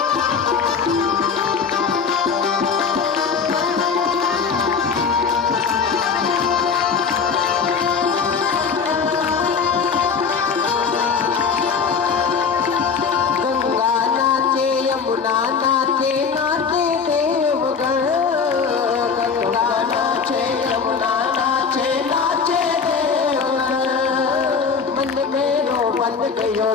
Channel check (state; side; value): quieter; right; 5.8 dB